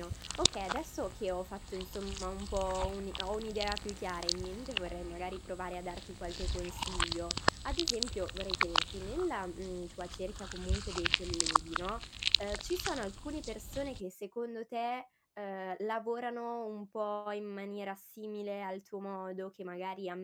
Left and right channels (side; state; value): both; identical; correlation 1.00